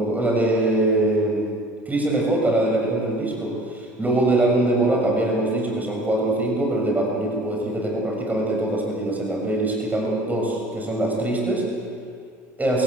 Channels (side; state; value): both; normal; correlation 0.48